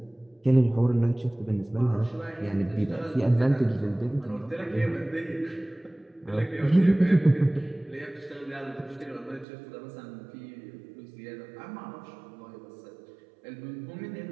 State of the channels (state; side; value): drops out; left; at 9.5 s